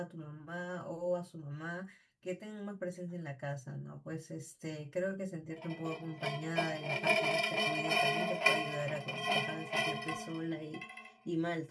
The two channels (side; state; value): both; identical; correlation 1.00